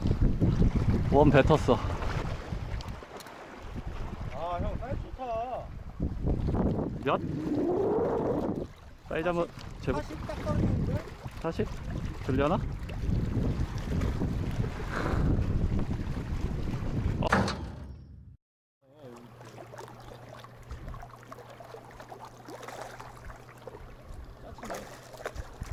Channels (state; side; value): identical; both; correlation 1.00